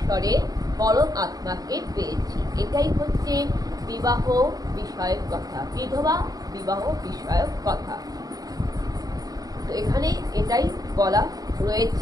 পরম আত্মাকে পেয়েছি। এটাই হচ্ছে বিবাহ বিষয়ক কথা, বিধবা বিবাহ বিষয়ক কথা। তো এখানে এটাই বলা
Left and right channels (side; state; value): left; late; 0.18 ms